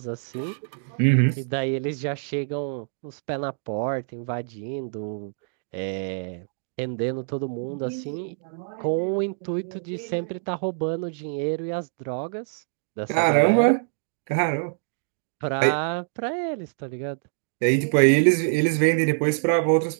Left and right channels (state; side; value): silent; left; digital silence